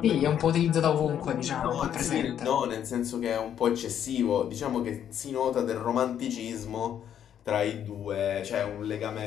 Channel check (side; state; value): right; quieter; 9.6 dB